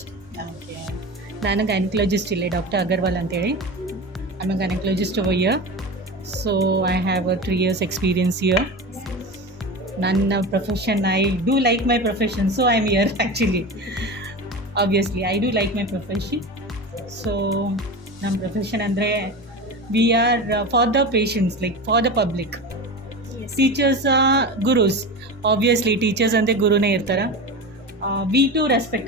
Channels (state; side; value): normal; both; correlation 0.27